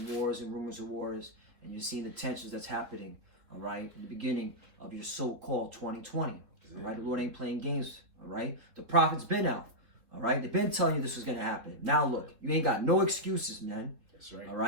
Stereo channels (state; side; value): late; left; 3.8 ms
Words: wars and rumors of wars, and you're seeing the tensions that's happening. All right, in the beginning of your so-called 2020. All right, the Lord ain't playing games. All right, the prophet's been out. All right, they've been telling you this was gonna happen. Now look, you ain't got no excuses, man. That's right. All